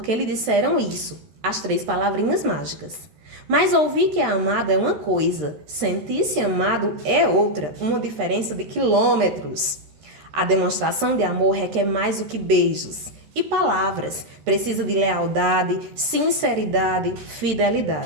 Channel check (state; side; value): late; left; 13 ms